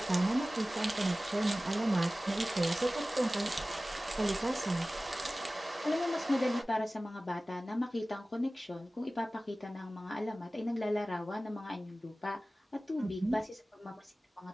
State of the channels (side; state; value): both; normal; correlation 0.97